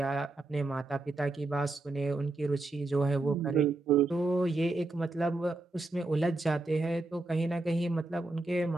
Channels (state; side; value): quieter; left; 3.0 dB